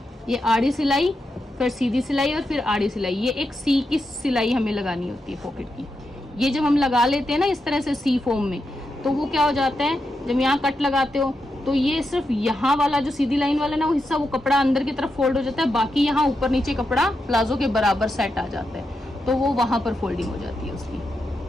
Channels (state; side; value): normal; both; correlation 0.86